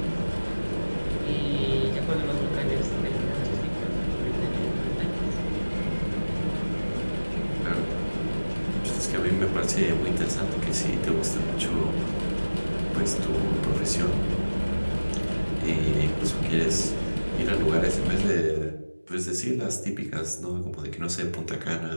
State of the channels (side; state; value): both; inverted; correlation -1.00